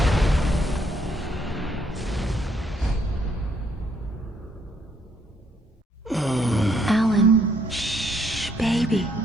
Alan, shh, baby.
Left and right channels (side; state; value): both; normal; correlation 0.70